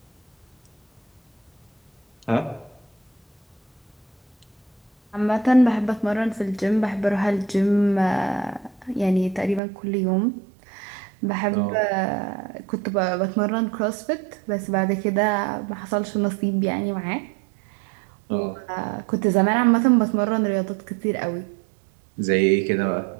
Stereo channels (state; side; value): drops out; left; at 9.6 s